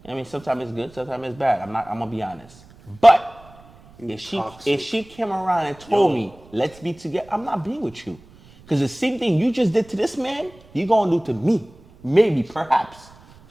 I mean, sometimes it's good, sometimes it's bad. I'm gonna be honest. But if she came around and told me, let's be together, I'm not being with you. Because the same thing you just did to this man, you gonna do to me. Maybe, perhaps.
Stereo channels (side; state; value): right; noise; rumble, 25 dB below the sound